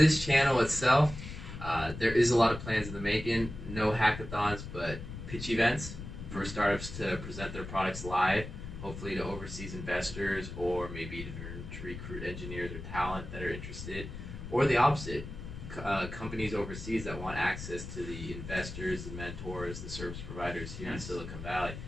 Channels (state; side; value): noise; left; rumble, 10 dB below the sound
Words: channel itself, there is a lot of plans in the making. No hackathons, but pitch events for startups to present their products live, hopefully to overseas investors or maybe to recruit engineers or talent that are interested, or the opposite, companies overseas that want access to the investors, the mentors, the service providers here in Silicon Valley,